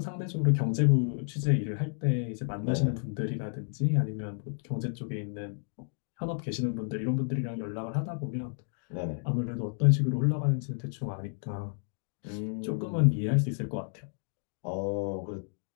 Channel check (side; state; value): right; silent; 57 dB below the other